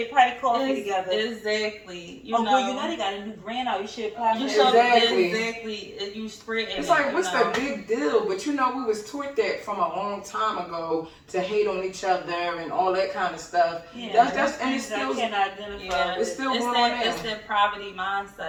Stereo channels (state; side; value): identical; both; correlation 1.00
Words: probably coffee together. Exactly. You Oh, know. girl, you know they got a new brand out. You should apply You for should that. exactly. You spread it's like, what's the big deal? But you know, we was taught that from a long time ago to hate on each other and all that kind of stuff. Yeah, That's and it's I still can identify Yeah, it's with. still going on that now. it's that poverty